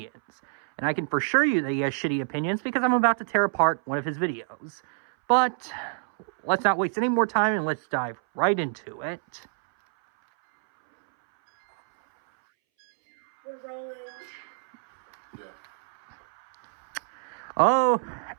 And I can for sure you that he has shitty opinions because I'm about to tear apart one of his videos. But let's not waste any more time and let's dive right into it. We're rolling. Yeah.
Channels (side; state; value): left; silent; 60 dB below the other